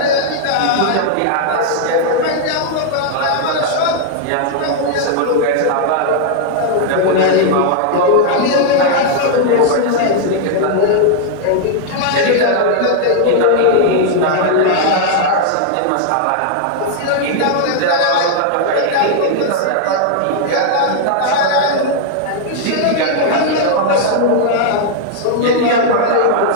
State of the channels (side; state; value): both; different; correlation -0.01